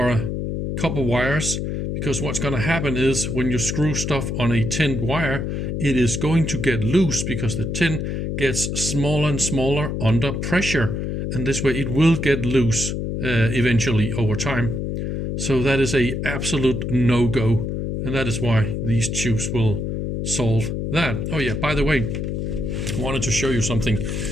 copper wires, because what's going to happen is when you screw stuff on a tinned wire, it is going to get loose because the tin gets smaller and smaller under pressure, and this way it will get loose eventually over time. So that is a absolute no-go, and that is why these tubes will solve that. Oh yeah, by the way, I wanted to show you something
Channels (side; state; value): left; noise; hum, 2 dB below the sound